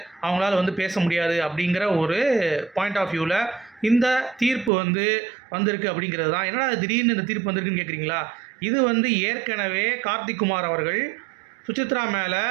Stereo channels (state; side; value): drops out; left; at 4.7 s